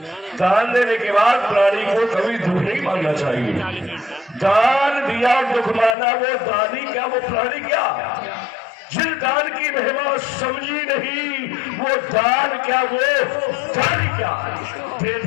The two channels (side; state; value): right; drops out; at 6.0 s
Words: दान देने के बाद प्राणी को कभी दुख नहीं मानना चाहिए। दान दिया और दुख माना, वो दानी क्या वो प्राणी क्या? जिन दान की महिमा समझी नहीं, वो दान क्या वो दानी क्या? दे